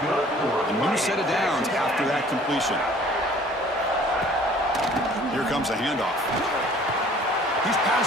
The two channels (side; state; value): both; normal; correlation 0.53